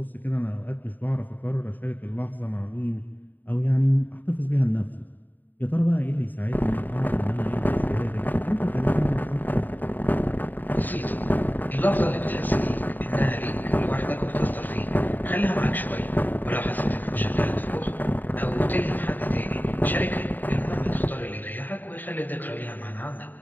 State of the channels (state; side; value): late; right; 0.088 ms